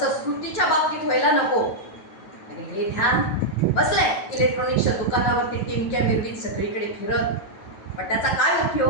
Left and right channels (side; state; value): right; late; 9.2 ms